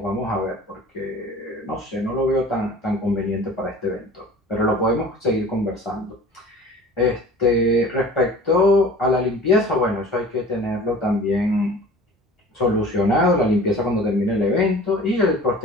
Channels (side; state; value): both; normal; correlation 0.43